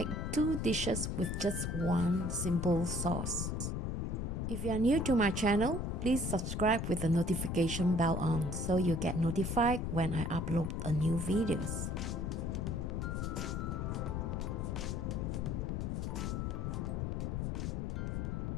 two dishes with just one simple sauce. If you are new to my channel, please subscribe with the notification bell on so you get notified when I upload a new videos.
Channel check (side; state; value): left; noise; rumble, 1 dB below the sound